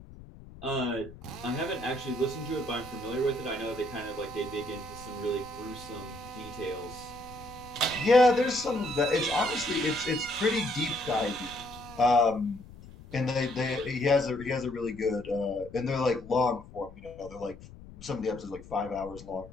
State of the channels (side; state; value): left; noise; rumble, 17 dB below the sound